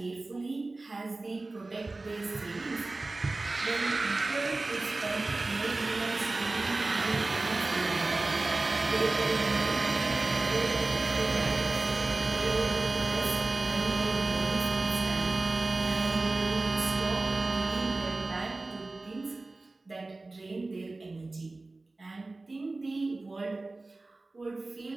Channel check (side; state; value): left; quieter; 3.2 dB